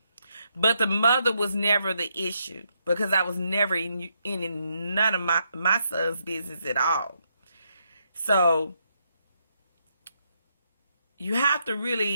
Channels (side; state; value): both; inverted; correlation -0.78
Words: But the mother was never the issue, because I was never in none of my son's business at all. So you have to